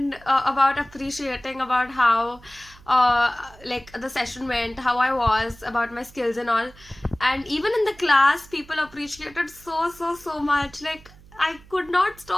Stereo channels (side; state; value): right; noise; hum, 23 dB below the sound